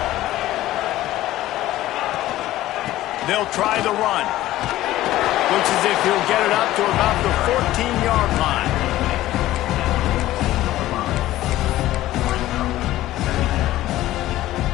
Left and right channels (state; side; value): quieter; right; 15.2 dB